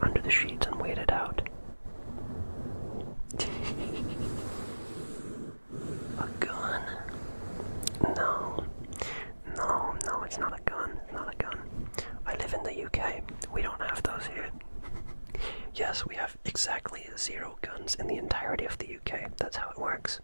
under the sheets and wait it out. A gun? No, it's not a gun. I live in the UK. We don't have those here. Yes, we have exactly 0 guns in the entirety of the UK. That's how it works.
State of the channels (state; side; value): inverted; both; correlation -1.00